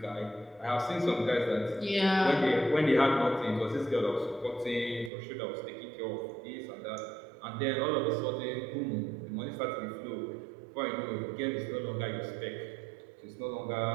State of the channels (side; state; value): left; drops out; at 5.1 s